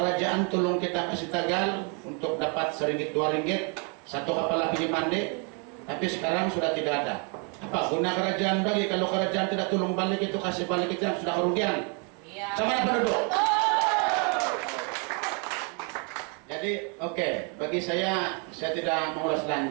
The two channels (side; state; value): left; quieter; 36.1 dB